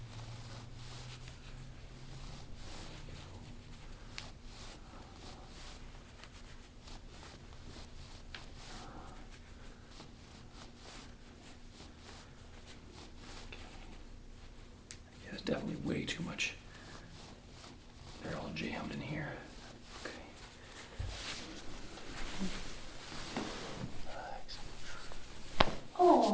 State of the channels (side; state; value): both; identical; correlation 1.00